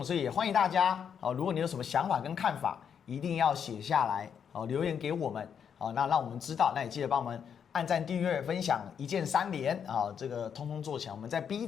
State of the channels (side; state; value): right; quieter; 7.6 dB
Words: 所以也欢迎大家哦，如果你有什么想法跟看法，一定要写下来哦，留言给我们哦，那让我们知道，那也记得帮我们按赞、订阅、分享，一键3连啊，这个通通做起来。我们在 B